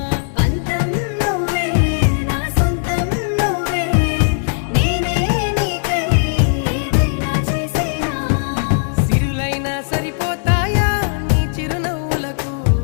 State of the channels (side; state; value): right; silent; 61 dB below the other